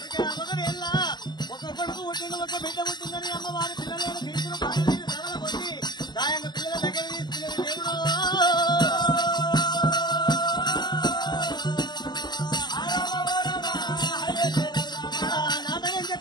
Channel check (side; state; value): right; late; 0.21 ms